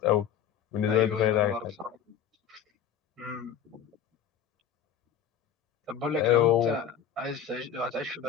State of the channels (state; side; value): quieter; right; 8.6 dB